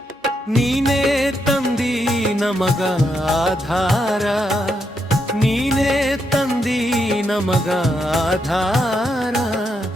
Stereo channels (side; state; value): both; normal; correlation 0.80